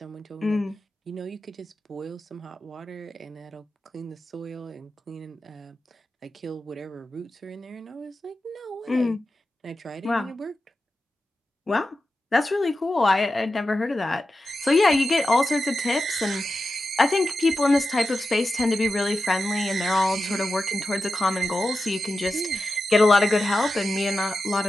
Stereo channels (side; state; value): both; normal; correlation 0.91